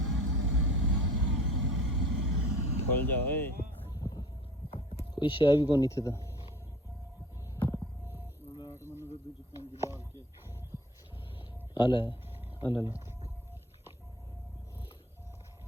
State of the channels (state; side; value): normal; both; correlation 0.44